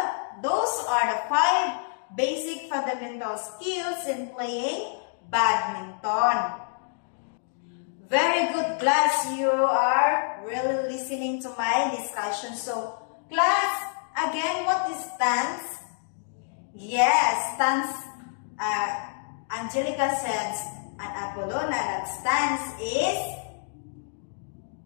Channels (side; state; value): right; silent; digital silence